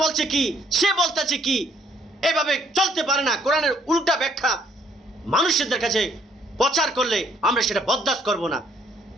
বলছে কি, সে বলতেছে কি, এভাবে চলতে পারে না। কোরআনের উল্টা ব্যাখ্যা মানুষদের কাছে প্রচার করলে আমরা সেটা বরদাস্ত করব না।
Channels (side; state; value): both; normal; correlation 0.65